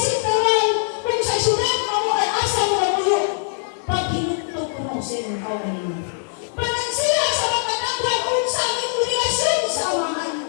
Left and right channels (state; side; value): silent; right; digital silence